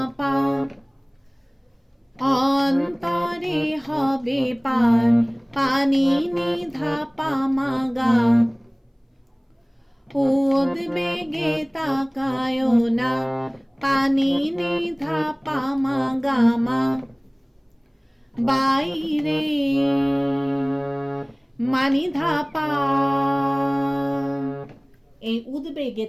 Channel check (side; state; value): both; identical; correlation 1.00